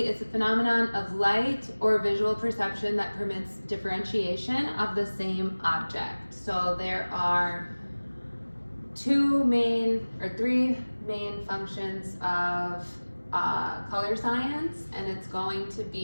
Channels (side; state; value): both; inverted; correlation -1.00